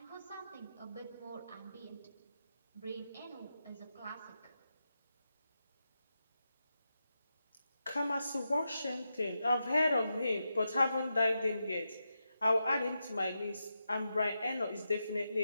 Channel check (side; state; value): both; inverted; correlation -0.88